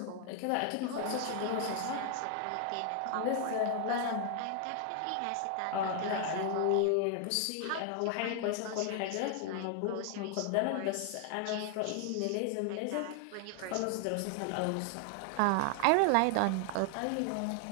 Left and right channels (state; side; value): different; both; correlation 0.00